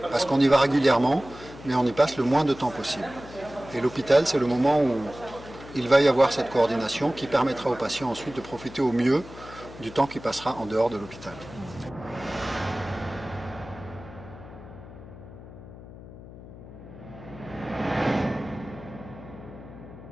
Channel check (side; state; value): left; noise; hum, 16 dB below the sound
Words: parce qu'on y va régulièrement, mais on y passe le moins de temps possible. Et l'hôpital, c'est le moment où il va y avoir cette coordination qui permettra au patient ensuite de profiter au mieux du temps qui passera en dehors de l'hôpital.